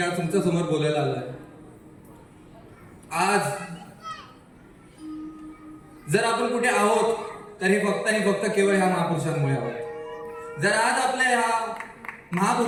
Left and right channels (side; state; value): both; identical; correlation 1.00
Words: आज तुमच्या समोर बोलायला आलोय. आज जर आपण कुठे आहोत तर हे फक्त आणि फक्त केवळ ह्या महापुरुषांमुळे आहोत. जर आज आपल्या ह्या